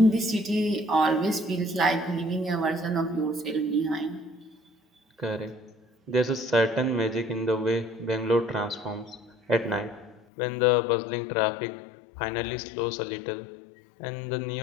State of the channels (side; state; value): right; drops out; at 10.2 s